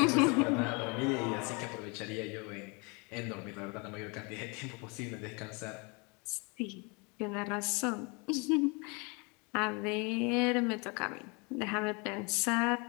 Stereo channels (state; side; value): quieter; right; 30.6 dB